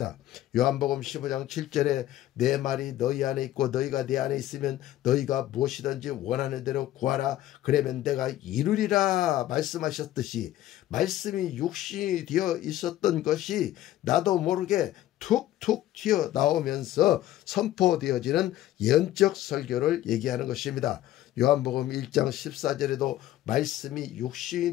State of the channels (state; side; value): quieter; right; 13.9 dB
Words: 요한복음 15장 7절에 내 말이 너희 안에 있고 너희가 내 안에 있으면 너희가 무엇이든지 원하는 대로 구하라 그러면 내가 이루리라 말씀하셨듯이 말씀이 육신이 되어 있었던 것이 나도 모르게 툭툭 튀어나오면서 선포되어지는 예언적 설교를 얘기하는 것입니다. 요한복음 1장 14절에도 말씀이